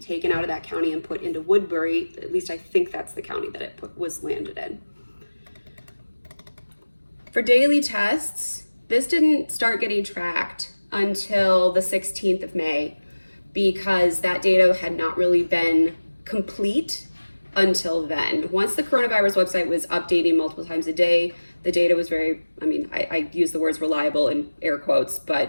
out of that county and put into Woodbury. At least I think that's the county that it was landed in. For daily tests, this didn't start getting tracked until the 16th of May, because that data had not really been complete until then. Once the coronavirus website was updating multiple times a day, the data was very, I use the words reliable in air quotes,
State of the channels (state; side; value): inverted; both; correlation -1.00